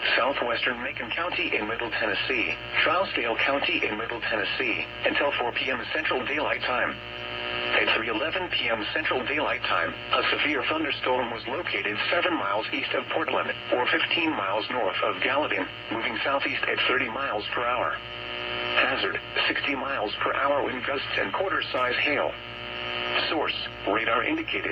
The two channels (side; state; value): both; identical; correlation 1.00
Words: southwestern Macon County in Middle Tennessee, Trousdale County in Middle Tennessee, until 4 p.m. Central Daylight Time. At 3:11 p.m. Central Daylight Time, a severe thunderstorm was located 7 miles east of Portland, or 15 miles north of Gallatin, moving southeast at 30 miles per hour. Hazard, 60 miles per hour wind gusts and quarter-size hail. Source, radar